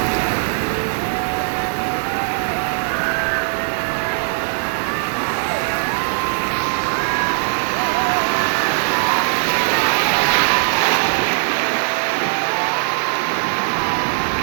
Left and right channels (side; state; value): left; silent; digital silence